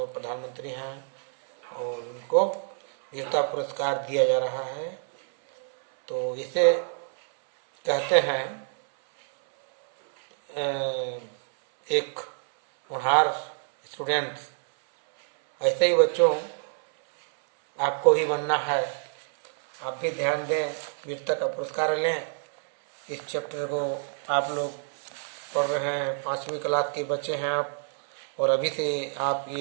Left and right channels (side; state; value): left; silent; 60 dB below the other